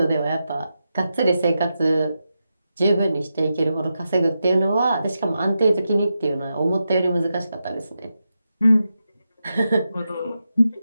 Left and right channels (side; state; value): both; inverted; correlation -0.88